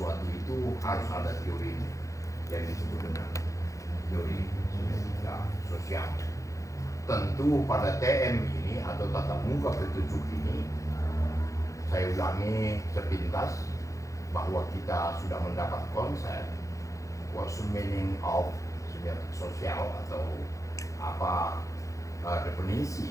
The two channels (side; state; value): right; late; 0.15 ms